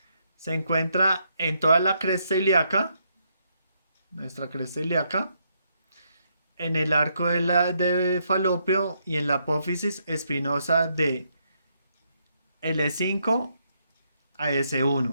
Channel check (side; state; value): both; inverted; correlation -0.76